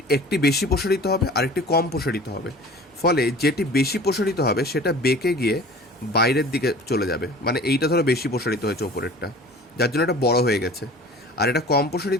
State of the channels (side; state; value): both; normal; correlation 0.43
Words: একটি বেশি প্রসারিত হবে আর একটি কম প্রসারিত হবে। ফলে যেটি বেশি প্রসারিত হবে সেটা বেঁকে গিয়ে বাইরের দিকে চলে যাবে, মানে এইটা ধরো বেশি প্রসারিত হয়েছে ওপরেরটা, যার জন্য এটা বড় হয়ে গেছে, আর এটা কম